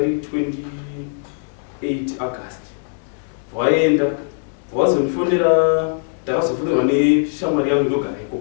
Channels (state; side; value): silent; right; 61 dB below the other